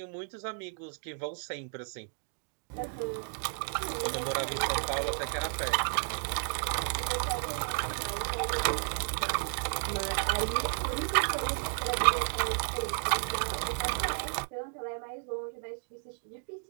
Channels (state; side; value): silent; left; digital silence